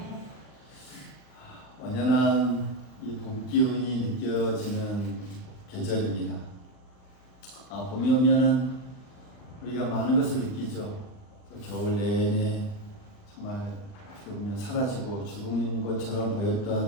완연한 이 봄 기운이 느껴지는 계절입니다. 봄이 오면은 우리가 많은 것을 느끼죠. 또 겨울 내내 정말 어떻게 보면 사라지고 죽은 것처럼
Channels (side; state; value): right; late; 39 ms